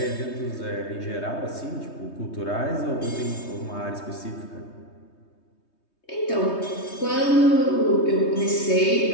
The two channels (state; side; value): late; right; 3.2 ms